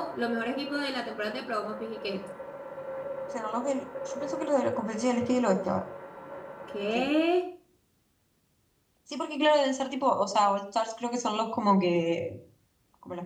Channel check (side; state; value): both; identical; correlation 1.00